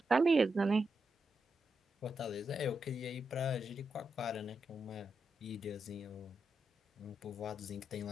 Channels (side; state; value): both; normal; correlation 0.85